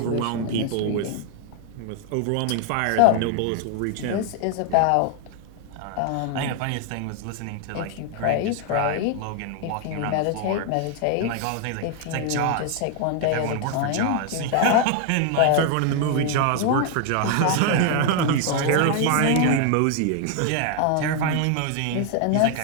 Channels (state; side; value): different; both; correlation 0.00